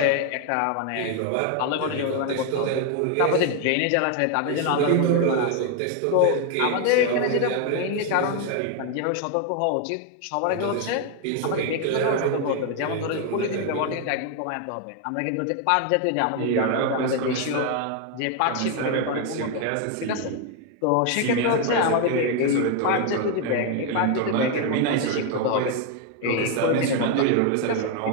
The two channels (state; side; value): different; both; correlation 0.01